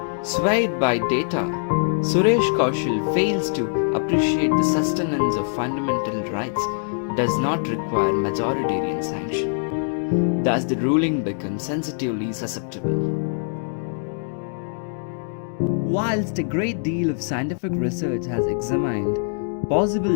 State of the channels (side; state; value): right; silent; digital silence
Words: swayed by data, Suresh Kaushal fails to appreciate the sustenance of fundamental rights does not require majoritarian sanction. Thus the ruling becomes sensitively susceptible. Whilst a great deal of scientific research has examined possible